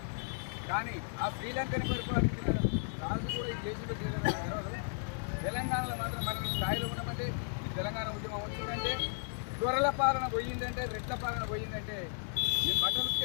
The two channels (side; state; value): right; silent; digital silence